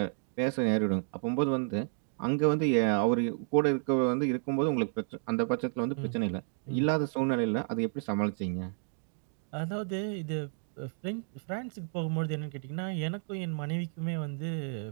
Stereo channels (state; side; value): silent; left; 57 dB below the other